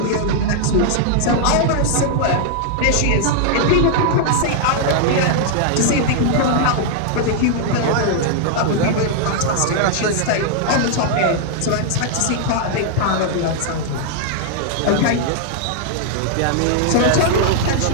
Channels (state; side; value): different; both; correlation -0.01